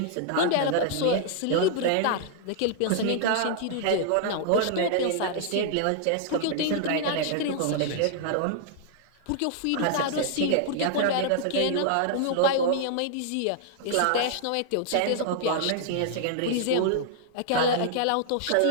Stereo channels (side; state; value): both; different; correlation -0.01